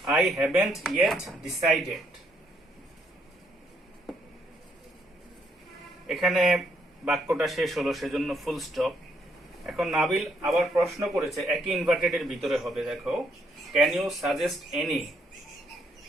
I haven't yet decided. এখানে বাক্যটা শেষ হলো, সেজন্য ফুল স্টপ। এখন নাবিল আবার প্রশ্ন করেছে, একই ইনভার্টেডের ভিতরে হবে দেখো, ক্যান ইউ সাজেস্ট এনি।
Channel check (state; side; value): normal; both; correlation 0.72